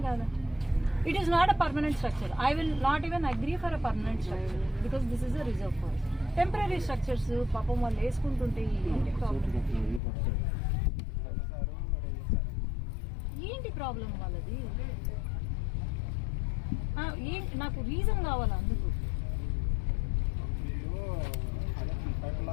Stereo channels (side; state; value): right; drops out; at 10.0 s